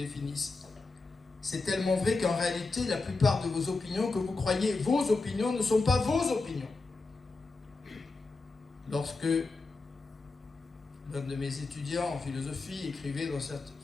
C'est tellement vrai qu'en réalité, la plupart de vos opinions que vous croyez vos opinions ne sont pas vos opinions. Lorsque l'un de mes étudiants en philosophie écrivait dans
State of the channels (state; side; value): quieter; right; 3.7 dB